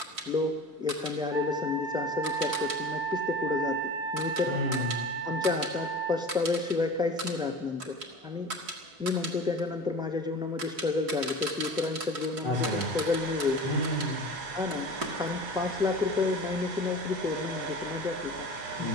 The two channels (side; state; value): left; late; 4.6 ms